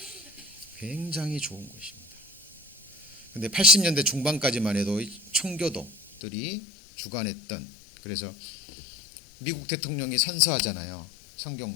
굉장히 좋은 곳입니다. 근데 80년대 중반까지만 해도 청교도들이 주관했던, 그래서 미국 대통령이 선서하잖아요. 성경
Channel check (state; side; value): drops out; right; at 6.2 s